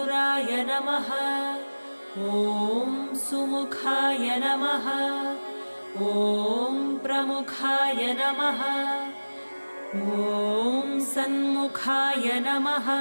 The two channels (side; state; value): both; inverted; correlation -1.00